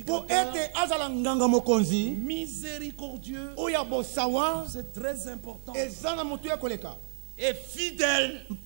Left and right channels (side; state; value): left; silent; digital silence